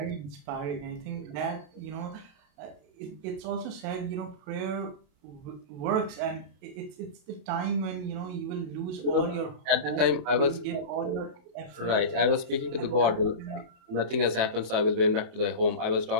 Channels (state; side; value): late; left; 27 ms